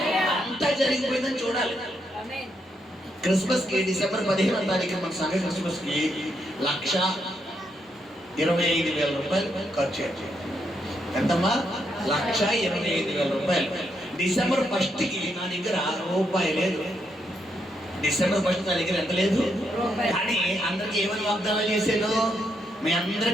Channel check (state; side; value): normal; both; correlation 0.79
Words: అంతా జరిగిపోయిందని చూడాలి. క్రిస్మస్ కి డిసెంబర్ 15వ తారీఖు మన సంఘ క్రిస్మస్ కి 1,25,000 రూపాయలు ఖర్చు అయ్యాయి. ఎంతమ్మా? 1,25,000 రూపాయలు. డిసెంబర్ 1 కి నా దగ్గర రూపాయి లేదు. డిసెంబర్ 1 నా దగ్గర ఎంత లేదు. కానీ అందరికి ఏమని వాగ్దానం చేశాను? మీ